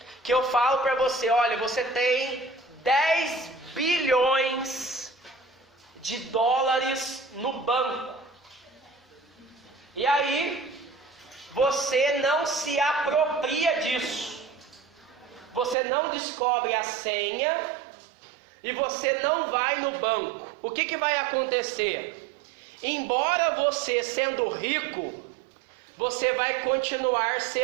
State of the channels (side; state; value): left; drops out; at 15.8 s